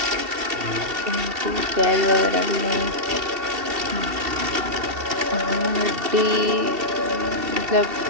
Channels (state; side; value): late; left; 2.7 ms